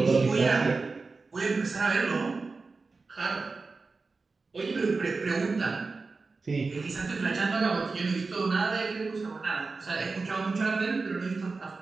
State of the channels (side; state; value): left; quieter; 4.0 dB